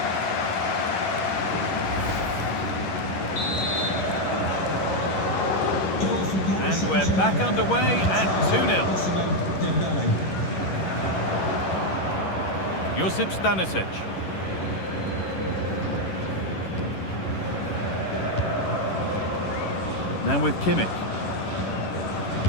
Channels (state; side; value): late; right; 11 ms